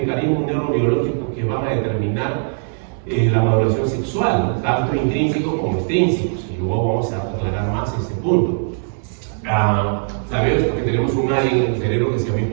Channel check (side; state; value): left; silent; digital silence